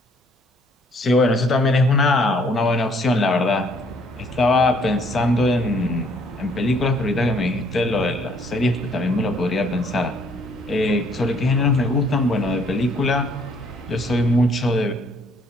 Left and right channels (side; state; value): both; normal; correlation 0.63